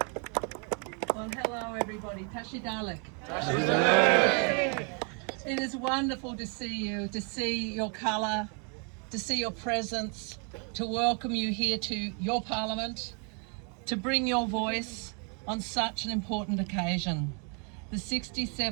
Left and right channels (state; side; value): quieter; left; 38.2 dB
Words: Well, hello everybody. Tashi Dalek. It is wonderful to see you, to see your colour, to see your presence, to welcome you here to your parliament, to bring your voice on such an important occasion. The